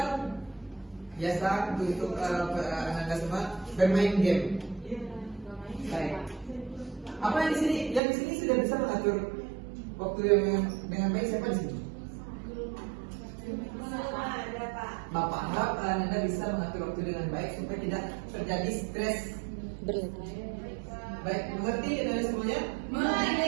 biasa untuk Anda semua bermain game. Baik. Apa yang di sini? Yang di sini sudah bisa mengatur waktu yang dengan baik, siapa di sini? Bapak harap Anda bisa mengatur waktu dengan baik supaya tidak terjadi stres. Berlebih. Baik, mengerti Anda semuanya?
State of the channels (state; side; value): drops out; left; at 8.0 s